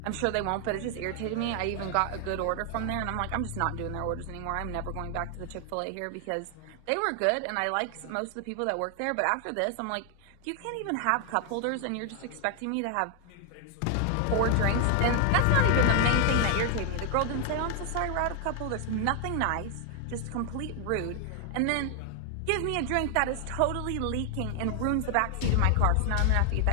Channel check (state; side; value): different; both; correlation 0.00